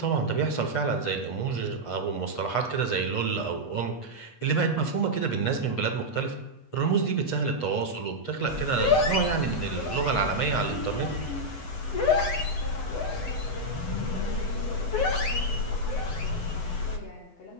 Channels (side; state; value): right; late; 8.2 ms